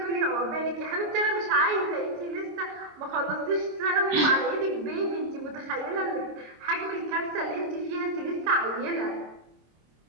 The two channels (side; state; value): left; late; 26 ms